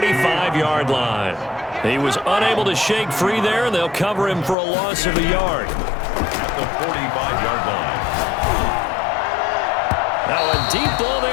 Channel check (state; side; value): drops out; right; at 4.5 s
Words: line. He was unable to shake free there, and they'll cover him for a loss of a yard. At the 45-yard line. Now a deep ball